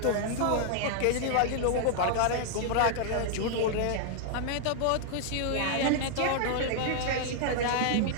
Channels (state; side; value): different; both; correlation 0.00